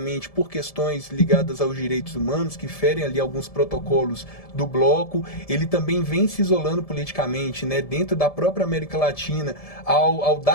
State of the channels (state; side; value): late; right; 1.7 ms